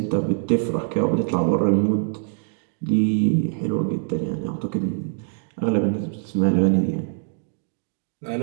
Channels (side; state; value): left; silent; 63 dB below the other